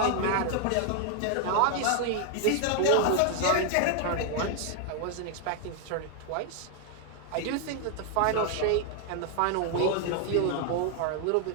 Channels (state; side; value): different; both; correlation 0.00